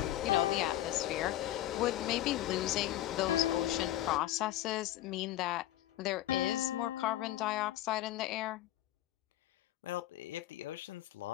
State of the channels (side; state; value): right; quieter; 14.1 dB